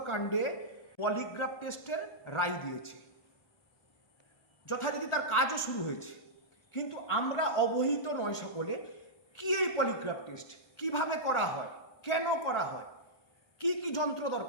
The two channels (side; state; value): right; late; 1.4 ms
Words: কাণ্ডে পলিগ্রাফ টেস্টের রায় দিয়েছে। যথারীতি তার কাজও শুরু হয়েছে, কিন্তু আমরা অবহিত নয় সকলে। কি এই পলিগ্রাফ টেস্ট, কিভাবে করা হয়, কেন করা হয়, কি কি যন্ত্র